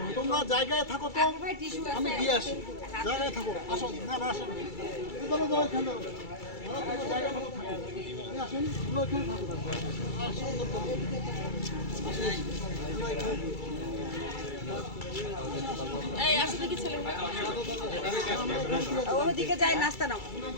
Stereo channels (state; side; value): late; right; 2.3 ms